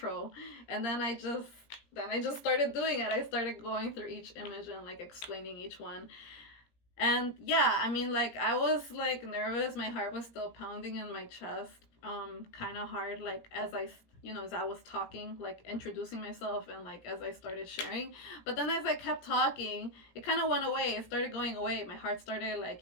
And then I just started doing it. I started going through each image and like explaining each one. And yeah, I mean, like, I was like nervous. My heart was still pounding in my chest, kind of hard, like as I was talking, like introducing myself, and like as I started sharing. But then as I kept talking, it kind of went away. It started going away. My heart started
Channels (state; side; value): late; right; 17 ms